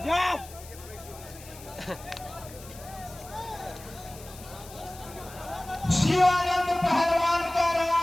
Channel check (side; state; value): left; noise; hiss, 18 dB below the sound